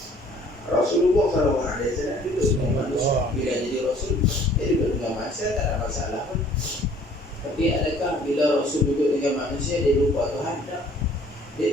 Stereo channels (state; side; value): normal; both; correlation 0.56